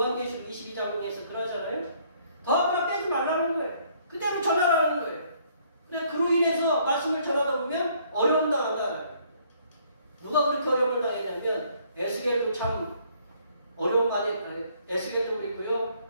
22장에서 그러잖아요. 더하거나 빼지 말라는 거예요. 그대로 전하라는 거예요. 근데 그로 인해서 말씀을 전하다 보면 어려움 당한다. 누가 그렇게 어려움을 당했냐면 에스겔도 참 어려움 많이 에스겔도 그렇고요.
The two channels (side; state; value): both; inverted; correlation -0.64